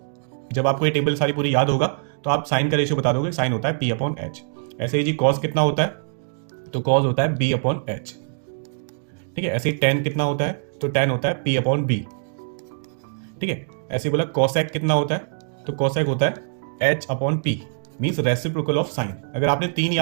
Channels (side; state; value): left; silent; digital silence